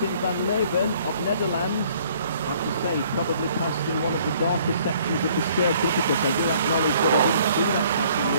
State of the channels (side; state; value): both; inverted; correlation -0.60